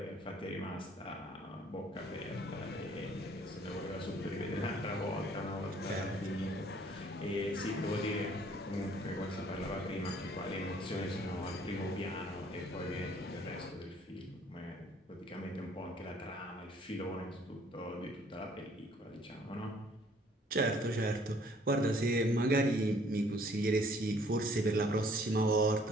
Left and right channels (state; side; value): normal; both; correlation 0.59